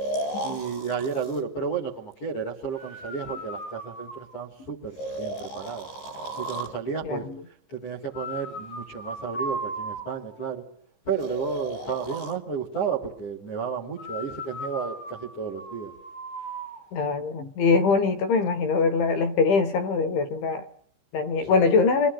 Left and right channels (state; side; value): late; right; 15 ms